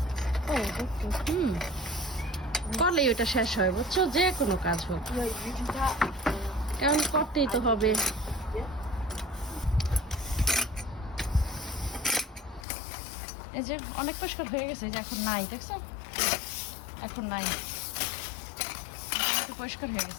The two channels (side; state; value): right; drops out; at 12.7 s